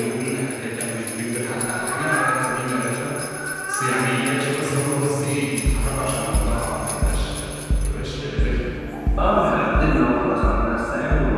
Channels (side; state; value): both; identical; correlation 1.00